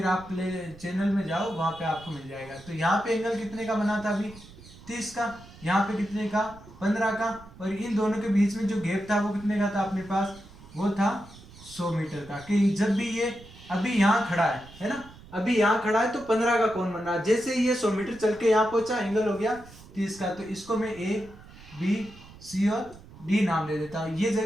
आप प्ले चैनल में जाओ, वहाँ पे आपको मिल जाएगा। तो यहाँ पे एंगल कितने का बना था अभी 30 का, यहाँ पे कितने का 15 का, और इन दोनों के बीच में जो गैप था वो कितने का था अपने पास, वो था 100 मीटर का। कि जब भी ये अभी यहाँ खड़ा है ना, अभी यहाँ खड़ा है तो 15 का कोण बन रहा है। जैसे ये 100 मीटर चल के यहाँ पहुंचा एंगल हो गया 30 का। तो इसको मैं ए बी सी और डी नाम दे देता हूँ। ये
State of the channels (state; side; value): noise; right; rumble, 20 dB below the sound